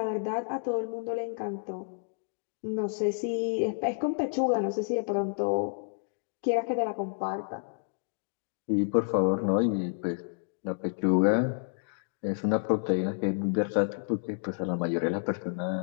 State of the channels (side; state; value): right; silent; digital silence